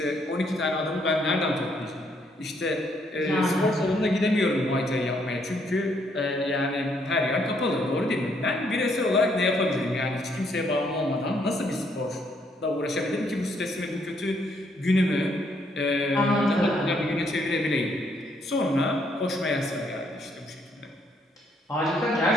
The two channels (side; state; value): both; normal; correlation 0.71